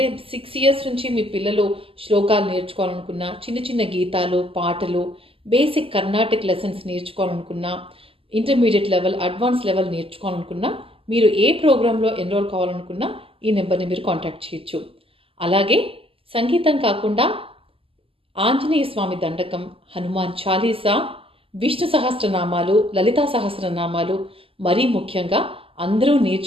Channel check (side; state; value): left; late; 0.26 ms